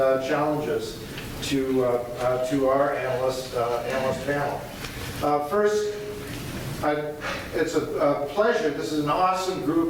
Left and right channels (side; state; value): both; identical; correlation 1.00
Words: challenges to our analyst panel. First, it's a pleasure. This is an awesome